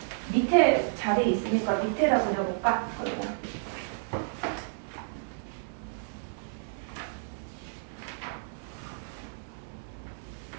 밑에 자리 있으니까 밑에다 그려볼까? 그러면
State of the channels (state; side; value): silent; left; digital silence